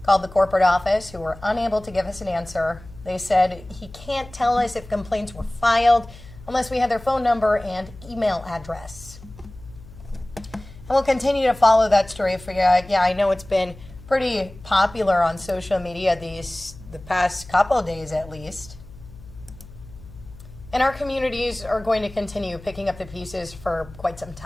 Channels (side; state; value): left; noise; hum, 19 dB below the sound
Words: Called the corporate office, who were unable to give us an answer. They said he can't tell us if complaints were filed unless we had their phone number and email address. And we'll continue to follow that story for you. Yeah, I know it's been pretty popular on social media the past couple of days at least. And our communities are going to continue picking up the pieces for quite some